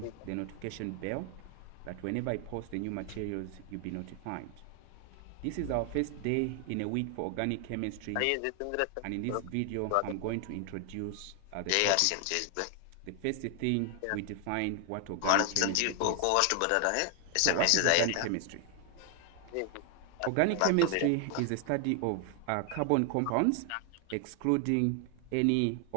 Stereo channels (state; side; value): different; both; correlation 0.00